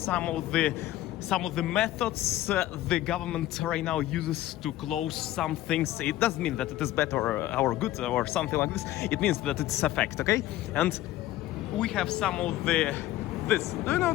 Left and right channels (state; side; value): quieter; right; 14.8 dB